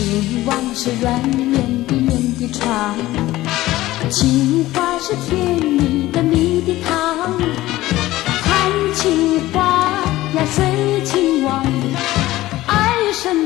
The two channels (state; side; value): quieter; right; 16.6 dB